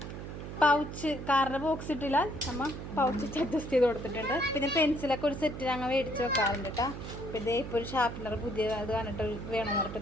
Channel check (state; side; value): noise; right; hum, 8 dB below the sound